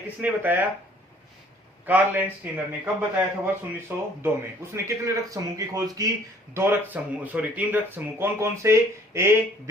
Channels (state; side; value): normal; both; correlation 0.57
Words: बताया? कार्ल लैंडस्टीनर ने। कब बताया था? वर्ष 1902 में। उसने कितने रक्त समूह की खोज की? 3 रक्त समूह। कौन कौन से? ए,